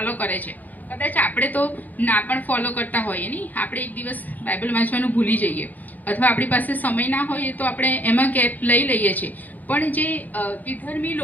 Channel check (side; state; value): right; late; 0.082 ms